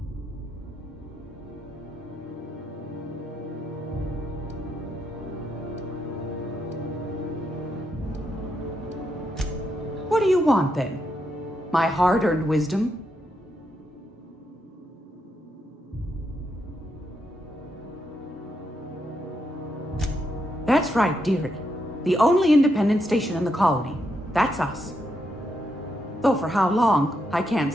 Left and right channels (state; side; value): normal; both; correlation 0.81